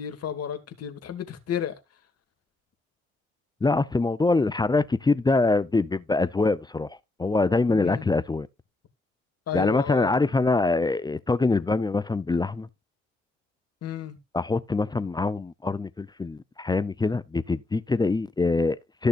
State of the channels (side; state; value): right; quieter; 3.1 dB